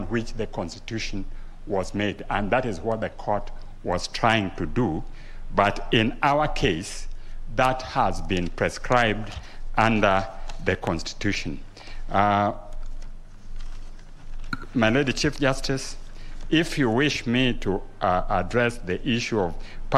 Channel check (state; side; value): identical; both; correlation 1.00